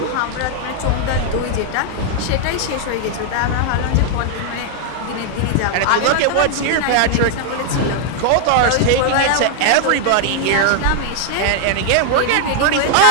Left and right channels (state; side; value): different; both; correlation 0.00